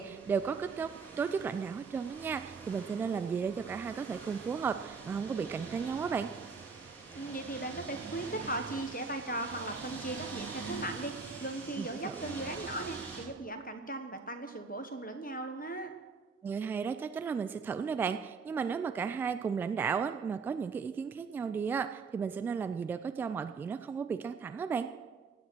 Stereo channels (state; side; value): quieter; left; 4.9 dB